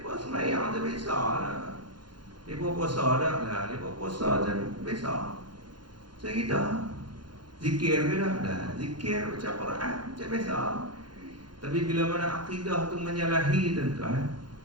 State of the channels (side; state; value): left; late; 0.71 ms